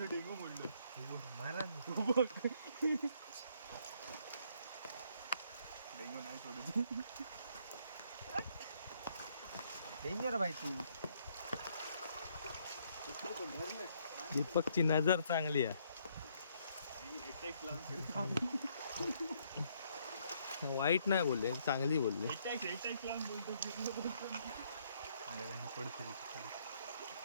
डेंगू म्हणलं डेंगू नाही सोडत. डेंजर भाई तू दीपकची नजर चांगली आहे. वाईट नाही बोलले, चांगली बोलले.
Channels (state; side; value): inverted; both; correlation -0.69